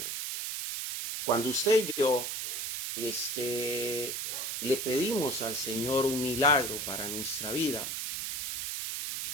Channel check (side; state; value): right; noise; hiss, 3 dB below the sound